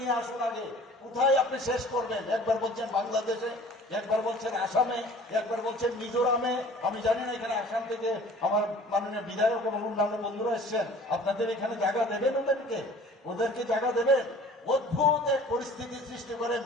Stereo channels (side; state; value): both; normal; correlation 0.48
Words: আসুন আগে। কোথায় আপনি শেষ করবেন? একবার বলছেন বাংলাদেশে, একবার বলছেন আসামে, একবার বলছেন মিজোরামে। আমি জানি না এখানে আসাম থেকে আমার মাননীয় বিধায়ক এবং অন্যান্য বন্ধুরা এসছেন, আপনাদের এখানে জায়গা দেবেন? ওদেরকে জায়গা দেবেন? অদ্ভুত এক পরিস্থিতি সৃষ্টি করে